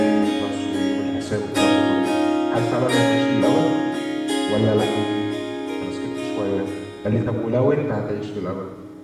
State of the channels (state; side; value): identical; both; correlation 1.00